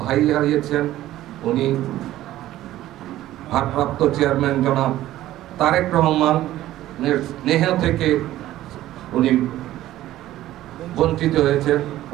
ভাই হারিয়েছেন, উনি ভারপ্রাপ্ত চেয়ারম্যান জনাব তারেক রহমানের স্নেহ থেকে উনি বঞ্চিত হয়েছেন,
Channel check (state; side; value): quieter; left; 14.4 dB